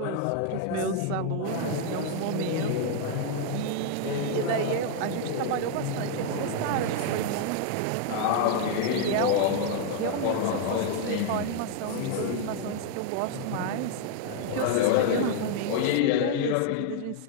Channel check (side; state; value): both; different; correlation 0.00